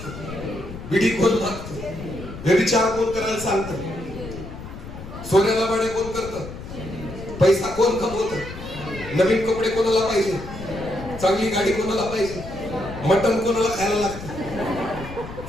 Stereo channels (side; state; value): left; noise; rumble, 11 dB below the sound